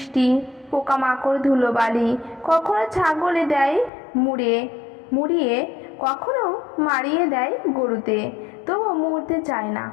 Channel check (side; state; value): right; drops out; at 3.9 s